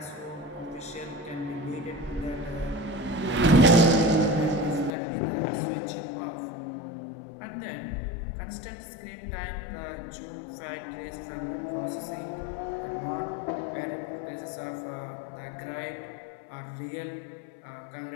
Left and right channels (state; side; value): drops out; right; at 4.9 s